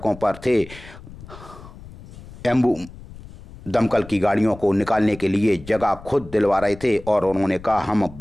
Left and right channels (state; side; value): noise; left; rumble, 17 dB below the sound